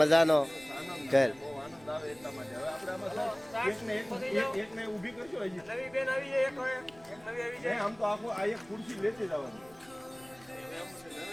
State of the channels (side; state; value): left; noise; rumble, 26 dB below the sound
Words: ખેલ. આમ તો આખું આ એક ખુરશી લેતી જવાની.